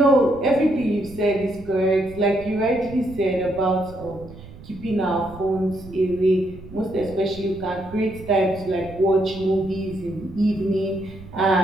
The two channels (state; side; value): noise; right; rumble, 17 dB below the sound